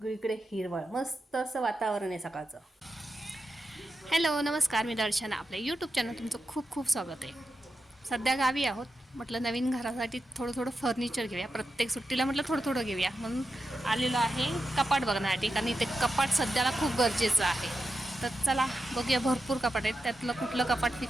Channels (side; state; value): both; normal; correlation 0.89